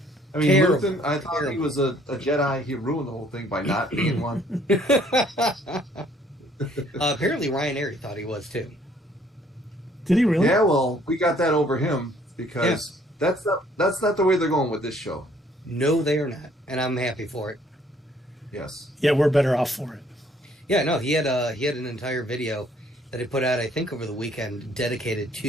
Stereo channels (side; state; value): both; normal; correlation 0.62